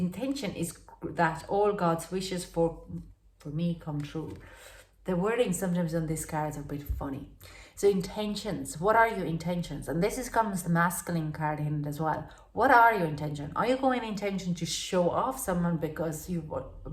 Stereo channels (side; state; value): both; identical; correlation 1.00